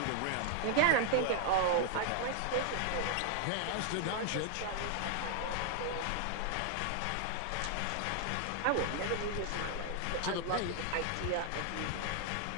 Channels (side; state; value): both; different; correlation 0.00